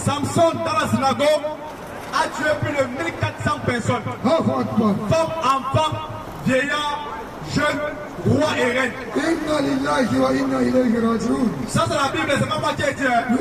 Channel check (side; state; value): both; identical; correlation 1.00